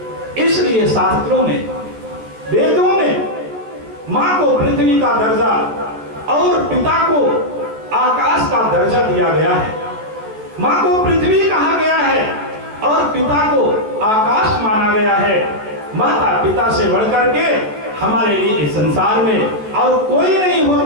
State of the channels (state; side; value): late; left; 14 ms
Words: इसलिए शास्त्रों में, वेदों में मां को पृथ्वी का दर्जा और पिता को आकाश का दर्जा दिया गया है। माँ को पृथ्वी कहा गया है और पिता को आकाश माना गया है। माता पिता से बढ़कर के हमारे लिए इस संसार में और कोई नहीं